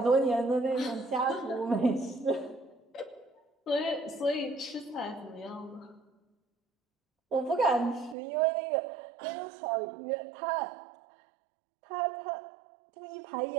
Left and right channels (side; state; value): left; drops out; at 8.2 s